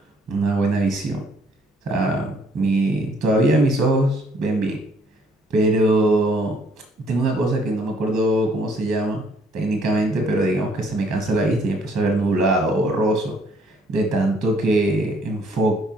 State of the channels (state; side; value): normal; both; correlation 0.64